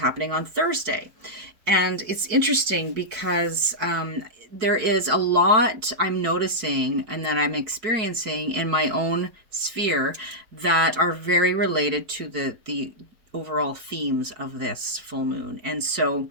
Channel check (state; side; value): late; left; 4.6 ms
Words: on Thursday. And it's interesting because there is a lot I'm noticing and that I'm experiencing in my own sphere that are very related to the overall themes of this full moon. And so